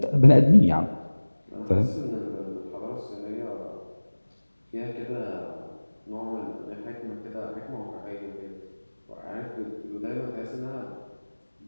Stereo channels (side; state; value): both; inverted; correlation -1.00